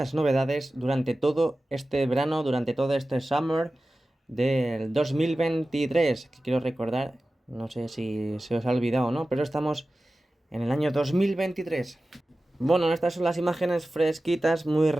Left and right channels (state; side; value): normal; both; correlation 0.95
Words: novedades durante todo este verano, durante todo este summer del 2023, que quiero recordar, no sé si se os ha olvidado o no, pero estamos en el año 2023. Bueno, estas son las imágenes fresquitas, muy